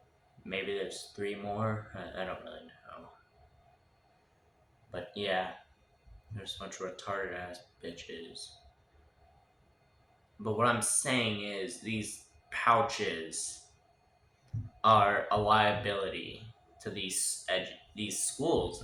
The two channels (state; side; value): identical; both; correlation 1.00